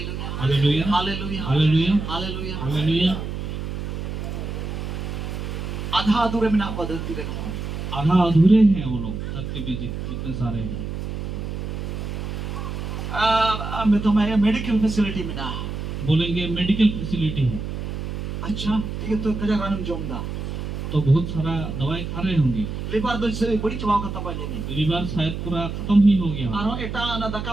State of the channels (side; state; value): right; noise; hum, 5 dB below the sound